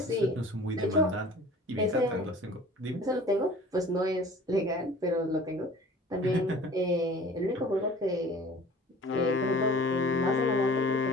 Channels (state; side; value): normal; both; correlation 0.46